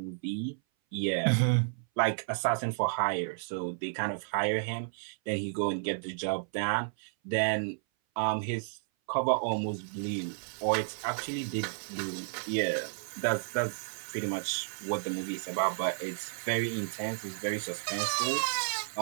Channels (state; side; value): silent; left; 56 dB below the other